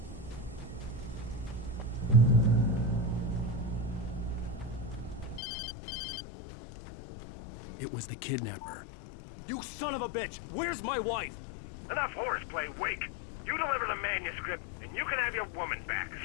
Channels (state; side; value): drops out; right; at 5.4 s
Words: It was the kidnapper. You son of a bitch! Where's my wife? Enough horseplay, Wake. You deliver the manuscript, and you can have your woman back.